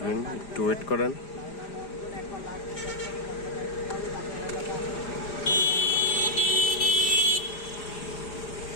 একটু ওয়েট করেন।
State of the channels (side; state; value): right; late; 4.9 ms